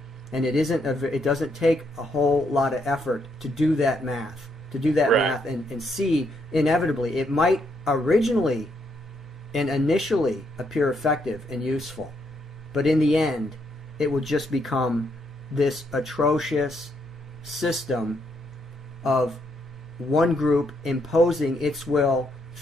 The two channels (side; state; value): both; normal; correlation 0.75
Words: And it doesn't take a whole lot of effort to do that math, and see, inevitably, it might originally and initially appear effective and useful, but in the end, it would just become this atrocious system of one group imposing its will